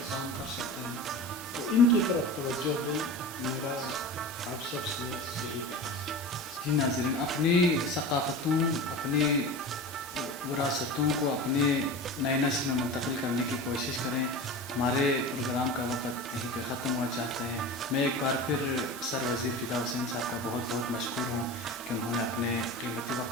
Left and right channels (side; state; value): both; normal; correlation 0.31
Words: کام کر سکتے ہیں. تو ان کی طرف توجہ دیں، میرا آپ سب سے یہی پیغام ہے. جی ناظرین، اپنی ثقافتوں، اپنی وراثتوں کو اپنے نئے نسل میں منتقل کرنے کی کوشش کریں. ہمارے پروگرام کا وقت یہیں پہ ختم ہوا چاہتے ہیں. میں ایک بار پھر سر وزیر فدا حسین صاحب کا بہت بہت مشکور ہوں کہ انہوں نے اپنے قیمتی